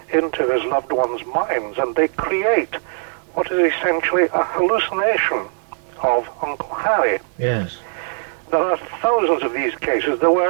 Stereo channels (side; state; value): left; silent; 58 dB below the other